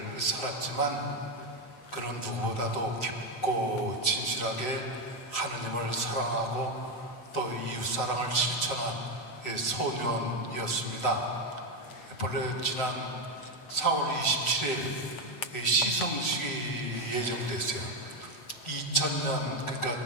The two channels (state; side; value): late; right; 7.8 ms